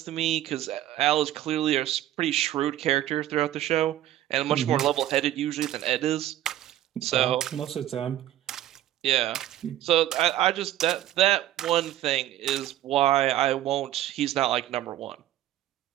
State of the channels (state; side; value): quieter; left; 13.3 dB